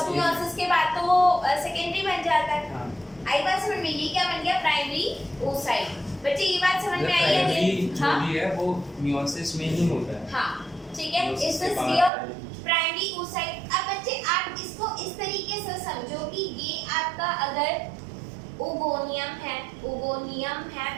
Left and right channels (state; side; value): drops out; left; at 12.1 s